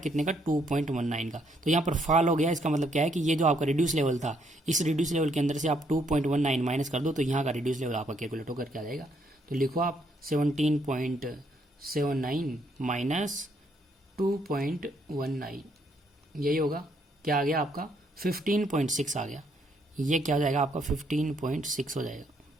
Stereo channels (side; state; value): both; normal; correlation 0.71